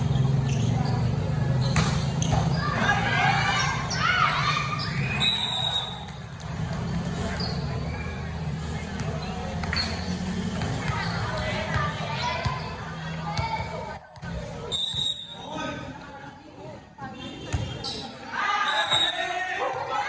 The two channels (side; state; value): both; identical; correlation 1.00